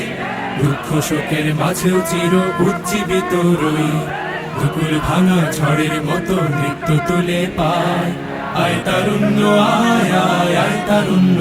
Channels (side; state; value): both; identical; correlation 1.00